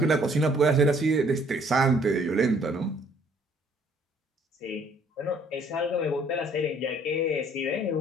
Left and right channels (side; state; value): both; normal; correlation 0.61